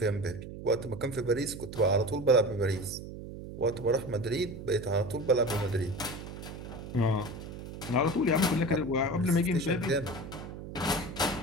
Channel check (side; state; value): right; noise; hum, 11 dB below the sound